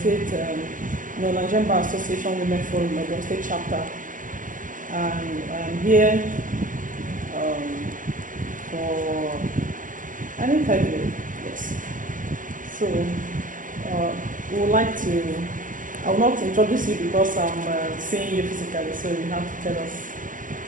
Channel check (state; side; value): late; left; 0.38 ms